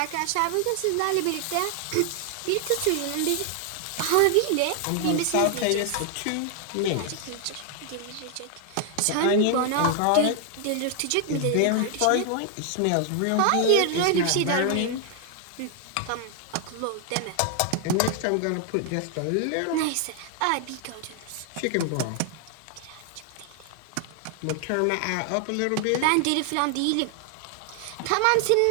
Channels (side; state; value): both; different; correlation 0.00